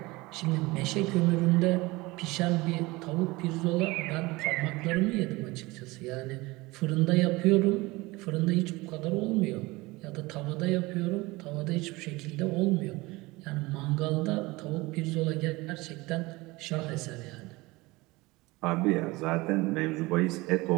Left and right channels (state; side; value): quieter; left; 22.0 dB